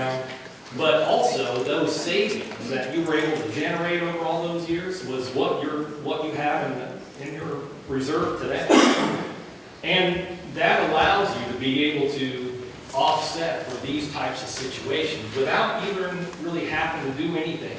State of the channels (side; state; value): both; identical; correlation 1.00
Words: but also those savings that you were able to generate over all those years was what you have in your reserve today. And that allows you to be able to offset for these types of situations without even really having to do anything